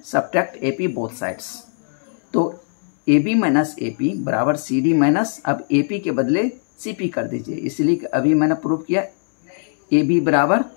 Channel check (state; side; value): silent; right; 63 dB below the other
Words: सब्ट्रैक्ट AP बोथ साइड्स, तो AB माइनस AP बराबर CD माइनस, अब AP के बदले CP कर दीजिए, इसलिए अभी मैंने प्रूव किया AB बराबर